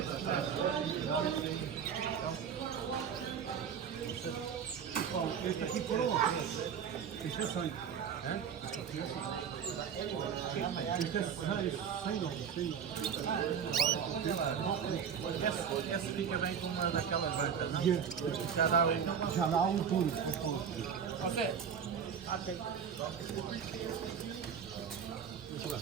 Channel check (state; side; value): quieter; left; 7.4 dB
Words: Este aquí color. Este es ahí. Este Essa fica bem com uma daquelas bancas, não? Já dá aí. Já dá puro. Você?